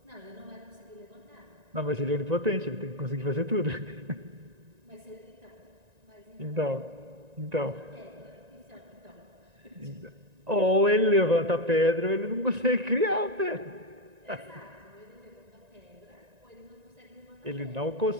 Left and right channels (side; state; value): left; late; 1.9 ms